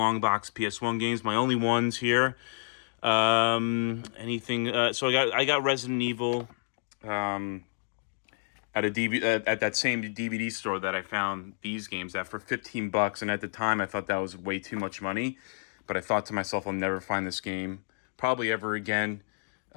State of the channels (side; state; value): right; silent; digital silence